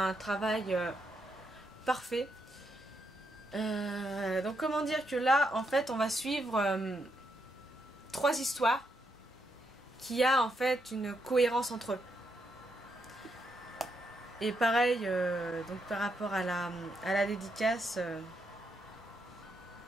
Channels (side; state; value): both; normal; correlation 0.79